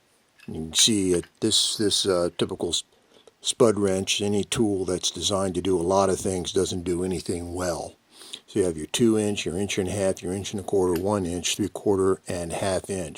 You can see this typical spud wrench, any tool that's designed to do a lot of things doesn't do anything well. So you have your 2-inch, your 1.5 inch, your 1.25 inch, 1 inch, 3/4, and 1/2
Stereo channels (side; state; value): both; identical; correlation 1.00